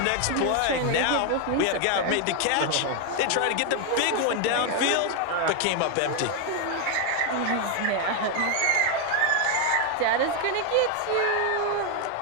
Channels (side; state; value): both; different; correlation 0.01